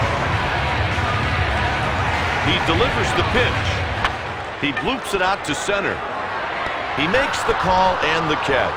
He delivers the pitch. He bloops it out to center. He makes the call and the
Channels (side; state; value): both; identical; correlation 1.00